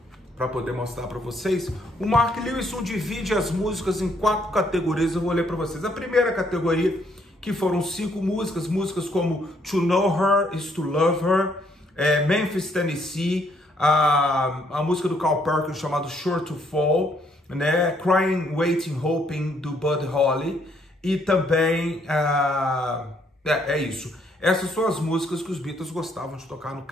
para poder mostrar para vocês, o Mark Lewisohn divide as músicas em 4 categorias, eu vou ler para vocês. A primeira categoria, que foram 5 músicas, músicas como To Know Her is to Love Her, Memphis, Tennessee, a música do Carl Perkins chamada Sure to Fall, né? Crying, Waiting, Hoping, do Buddy Holly, e também, é isso. Essas são as músicas que os Beatles gostavam de tocar no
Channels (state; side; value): normal; both; correlation 0.69